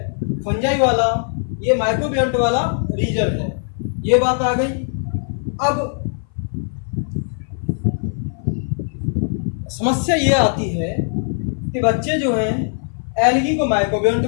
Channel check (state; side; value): silent; right; 58 dB below the other